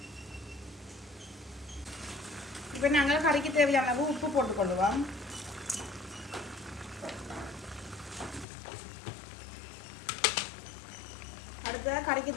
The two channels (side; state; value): right; drops out; at 8.5 s